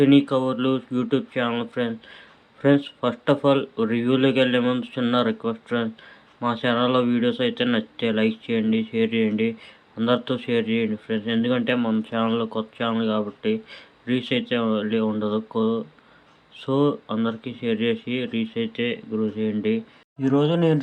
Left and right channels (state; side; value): identical; both; correlation 1.00